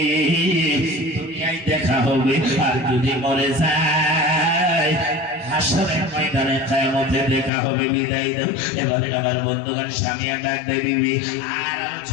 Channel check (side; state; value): right; drops out; at 7.5 s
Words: দুনিয়ায় দেখা হবে, আর যদি মরে যায় হাসরের ময়দানে কিয়ামতে দেখা হবে, বিদায় দাও। এবারে আমার বন্ধুগণ স্বামীয়া ডাক দেয়, বিবি আর